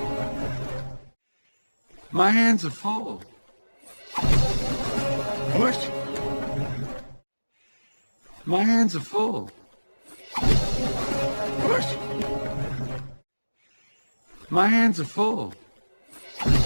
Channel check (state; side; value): inverted; both; correlation -1.00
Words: My hands are full. Push. My hands are full. Push. My hands are full.